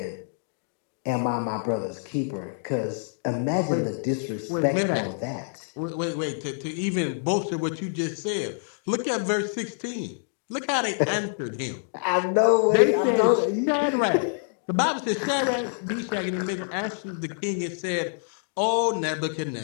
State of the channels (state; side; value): silent; right; digital silence